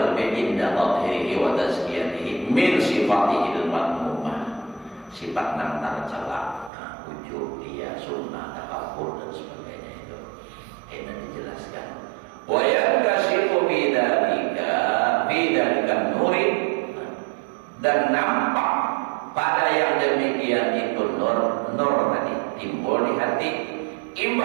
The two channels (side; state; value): left; drops out; at 6.7 s